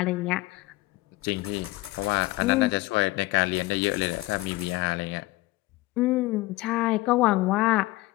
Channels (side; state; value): right; quieter; 20.0 dB